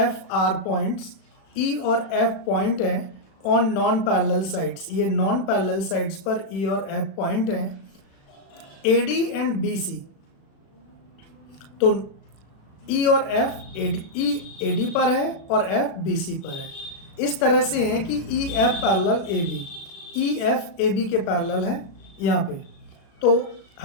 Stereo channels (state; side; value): late; right; 36 ms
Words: F are points, E और F पॉइंट है ऑन नॉन पैरेलल साइड्स। ये नॉन पैरेलल साइड्स पर E और F पॉइंट हैं। AD एंड BC, तो E और F E AD पर है और F BC पर है। इस तरह से है कि EF parallel AB, EF AB के पैरेलल है यहाँ पे। तो